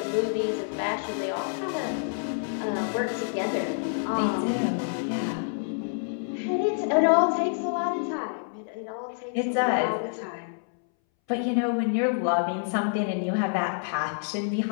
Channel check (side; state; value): right; silent; 60 dB below the other